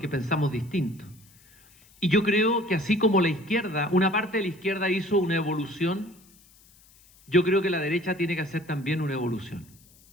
pensamos distinto. Y yo creo que así como la izquierda, una parte de la izquierda hizo una evolución, yo creo que la derecha tiene que hacer también una evolución.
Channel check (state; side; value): noise; left; hiss, 28 dB below the sound